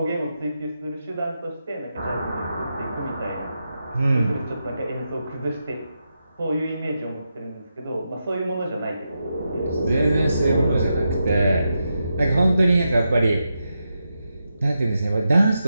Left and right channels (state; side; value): inverted; both; correlation -0.87